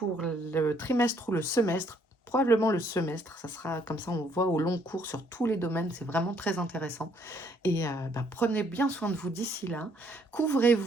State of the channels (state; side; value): normal; both; correlation 0.67